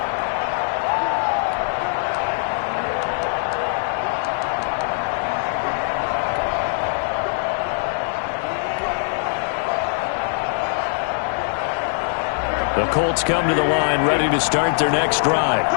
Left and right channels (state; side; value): silent; right; digital silence